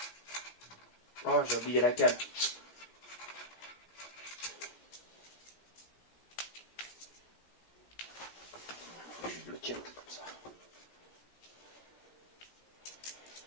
Oh, j'ai oublié la cale. Je le tiens comme ça.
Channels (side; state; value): right; late; 17 ms